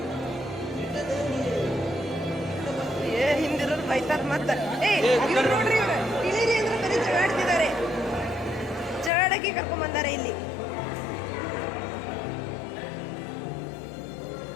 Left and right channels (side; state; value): right; drops out; at 9.1 s